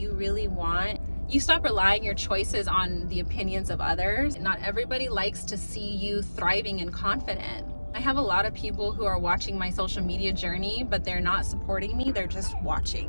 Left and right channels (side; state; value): both; inverted; correlation -1.00